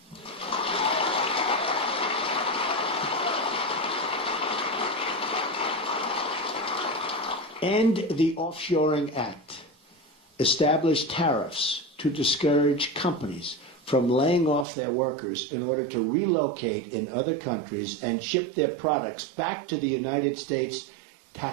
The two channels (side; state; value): left; drops out; at 14.7 s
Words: End the Offshoring Act. Establish tariffs to discourage companies from laying off their workers in order to relocate in other countries and ship their products back to the United States